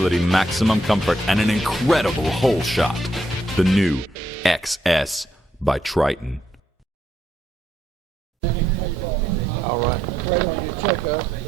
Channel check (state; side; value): normal; both; correlation 0.76